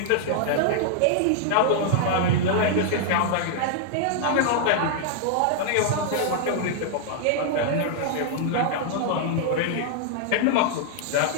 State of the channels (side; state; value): both; different; correlation -0.01